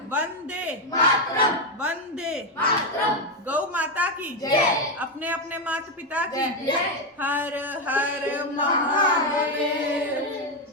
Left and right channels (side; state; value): both; normal; correlation 0.07